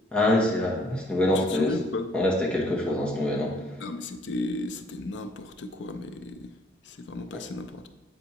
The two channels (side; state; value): both; normal; correlation 0.62